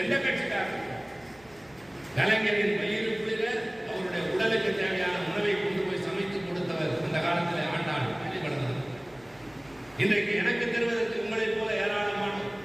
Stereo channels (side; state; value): right; noise; hum, 28 dB below the sound